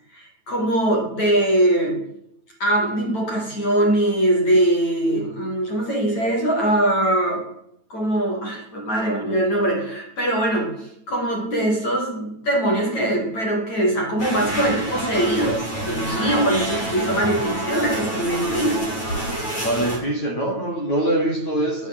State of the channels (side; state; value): right; late; 9.1 ms